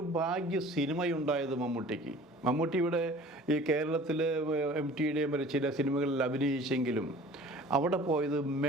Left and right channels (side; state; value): both; normal; correlation 0.46